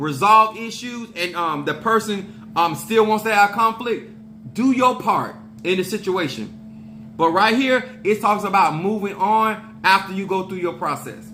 issues and the person still wants to have conflict, do your part in the situation. But right here, it talks about moving on after you go through your process.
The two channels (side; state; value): both; identical; correlation 1.00